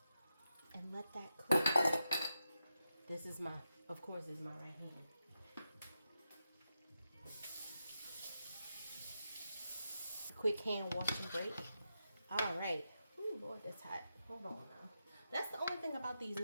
and let that cook. This is my, of course, this is my right hand. Quick hand wash and break. All right. Ooh, Lord, that's hot. Hold on now. That's the only thing about these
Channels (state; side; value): inverted; both; correlation -0.87